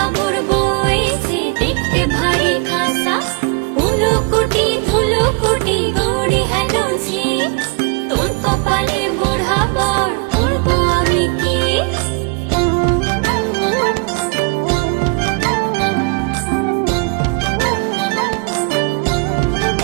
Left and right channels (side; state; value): left; quieter; 31.4 dB